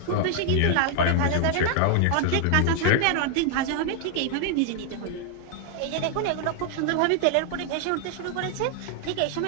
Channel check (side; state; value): both; different; correlation 0.00